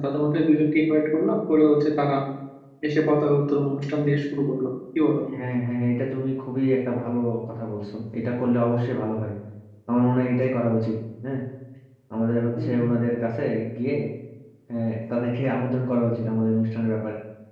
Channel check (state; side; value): identical; both; correlation 1.00